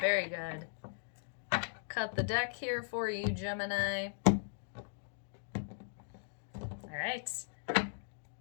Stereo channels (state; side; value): silent; right; digital silence